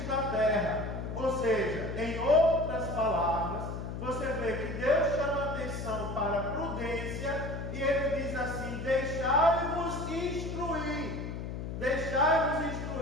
da terra. Ou seja, em outras palavras, você vê que Deus chama atenção para a prudência e Ele diz assim, deixai-vos instruir. Deixai-vos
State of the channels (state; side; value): noise; left; hum, 6 dB below the sound